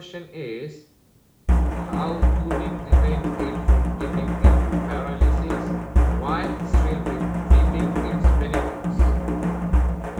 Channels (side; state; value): both; identical; correlation 1.00